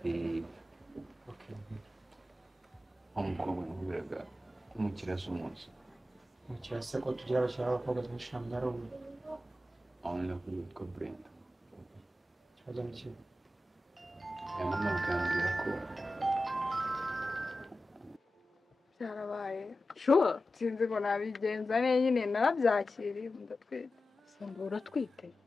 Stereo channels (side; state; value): both; normal; correlation 0.93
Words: umukobwa nkubiraga umukiriya z'umunsi umukiriya se ko tugira abakiriya b'abakobwa benshi ntabwo ari umwe aho ni kuri witwa Brenda ikibazo ni kimwe mama akambwira ko byarabaye sure sinzi ngo nabigenza neza nyine narabyakiriye ndatwite samba uratwite